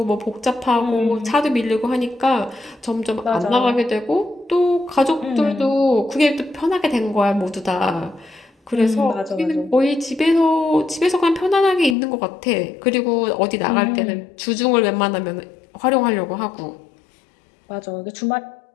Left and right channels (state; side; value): drops out; right; at 12.0 s